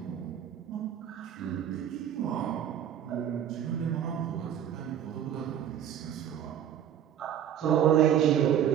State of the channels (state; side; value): quieter; left; 10.0 dB